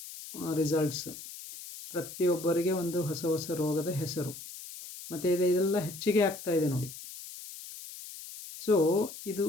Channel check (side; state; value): left; noise; hiss, 13 dB below the sound